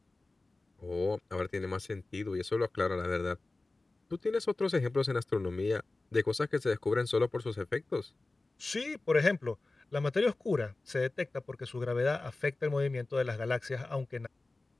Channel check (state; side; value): quieter; right; 3.2 dB